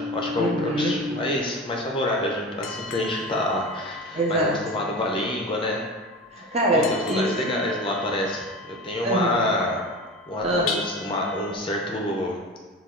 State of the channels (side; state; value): both; normal; correlation 0.30